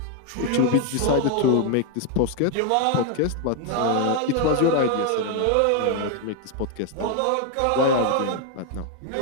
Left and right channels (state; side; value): different; both; correlation 0.00